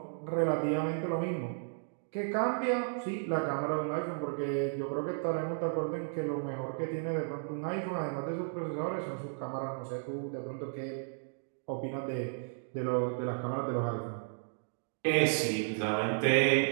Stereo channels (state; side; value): silent; left; digital silence